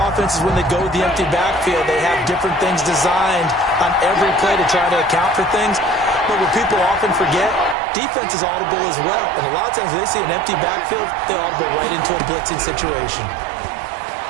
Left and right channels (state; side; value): drops out; left; at 7.8 s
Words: when they go with the empty backfield, they have different things designed on every play to try to account for things. But what people often forget, defense is audible as well. And a lot of times when they see an empty backfield, they audible right into a blitzing situation.